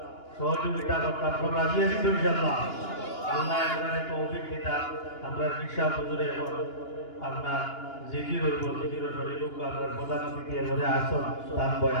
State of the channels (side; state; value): right; late; 2.9 ms